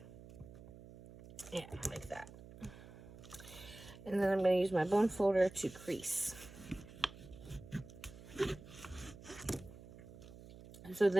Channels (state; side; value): noise; right; hum, 16 dB below the sound